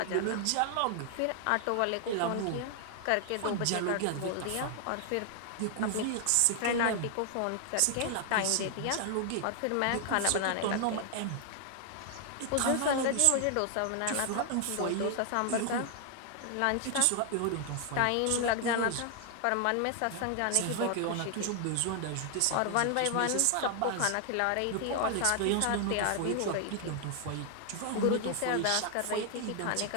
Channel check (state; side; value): different; both; correlation 0.00